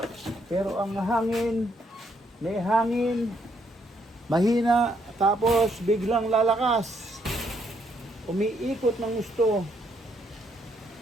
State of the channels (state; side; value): normal; both; correlation 0.72